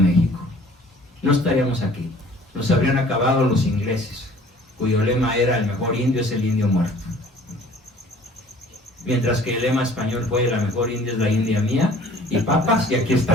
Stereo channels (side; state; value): both; normal; correlation 0.51